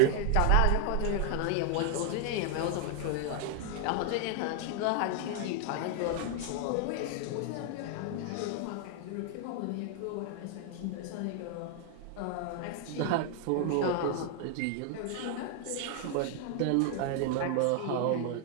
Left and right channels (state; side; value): different; both; correlation 0.00